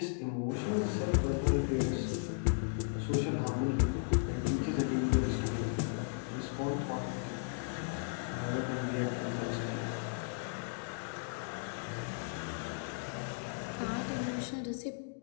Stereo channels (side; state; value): right; silent; digital silence